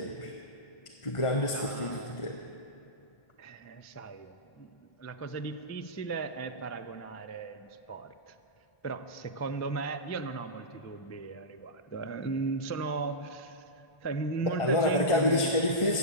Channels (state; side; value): late; right; 1.5 ms